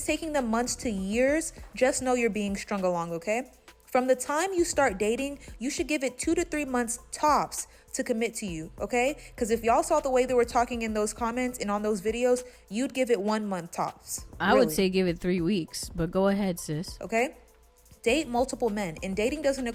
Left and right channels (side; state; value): both; identical; correlation 1.00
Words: taking them months to years, just know you're being strung along, okay? From the time you start dating, you should give it 2 to 3 months tops to commit to you, okay? Because if y'all saw the way they were talking in those comments and on those videos, you'd give it 1 month tops. I would say give it 3 weeks, but go ahead, sis. Okay? Date multiple men, and dating doesn't